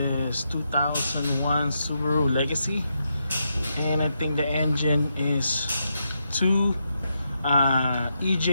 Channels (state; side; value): inverted; both; correlation -0.82